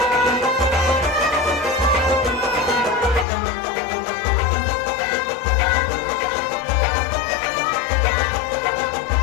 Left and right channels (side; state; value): right; drops out; at 3.2 s